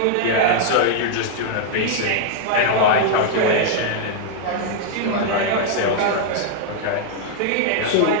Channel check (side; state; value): both; different; correlation -0.01